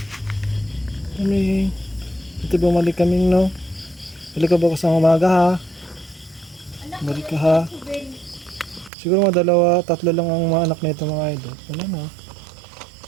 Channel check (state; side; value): drops out; left; at 8.9 s